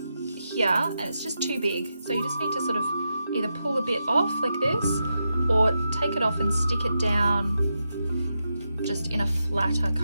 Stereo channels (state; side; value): inverted; both; correlation -0.87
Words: here and it's just too big. So you just need to sort of either pull a bit off like this or take it off and stick it down just in a flatter